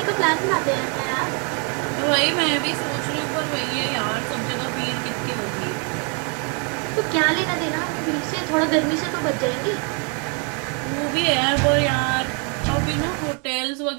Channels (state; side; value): quieter; left; 36.8 dB